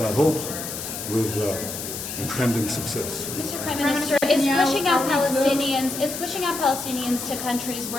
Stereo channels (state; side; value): noise; left; hiss, 7 dB below the sound